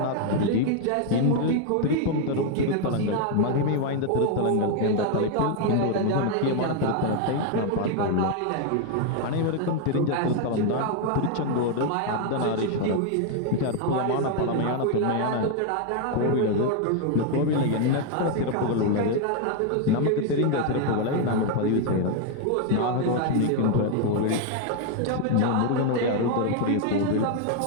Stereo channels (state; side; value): different; both; correlation 0.01